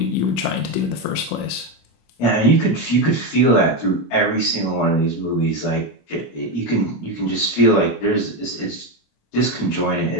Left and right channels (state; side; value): late; right; 25 ms